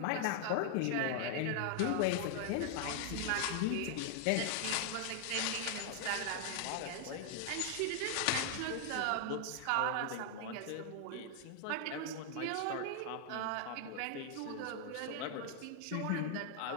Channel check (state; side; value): different; both; correlation 0.00